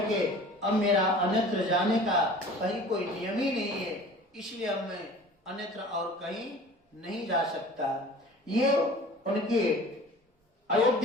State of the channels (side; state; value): both; normal; correlation 0.43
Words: अब मेरा अन्यत्र जाने का कहीं कोई नियम ही नहीं है, इसलिए अब मैं अन्यत्र और कहीं नहीं जा सकता। ये उनके